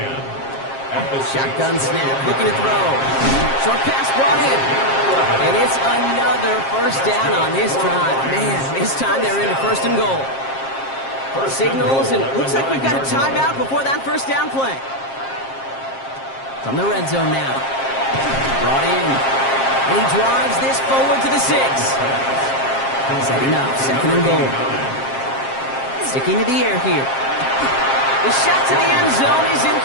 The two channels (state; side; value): late; right; 7.5 ms